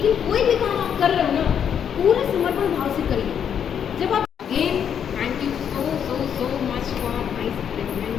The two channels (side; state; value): right; quieter; 8.3 dB